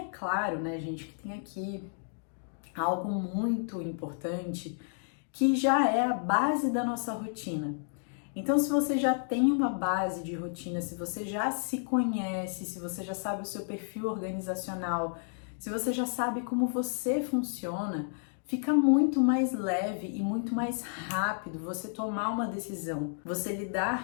claro, né, gente, que tem aqui algo muito importante que já é a base da nossa rotina. Então, se você já tem uma base de rotina, se você já se conhece, se você já sabe o seu perfil organizacional, se você já sabe como você funciona, fica muito mais leve e muito mais rápido você tomar uma decisão, você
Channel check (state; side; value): silent; right; digital silence